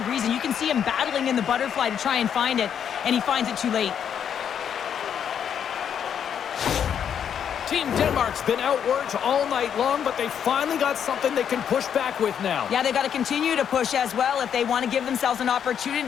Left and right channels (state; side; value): quieter; right; 8.4 dB